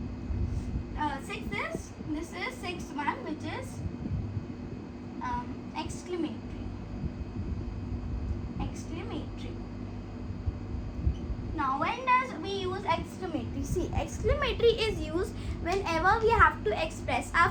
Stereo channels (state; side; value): identical; both; correlation 1.00